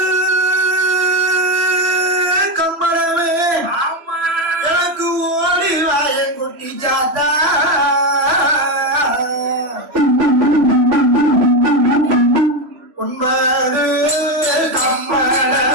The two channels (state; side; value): late; left; 3.0 ms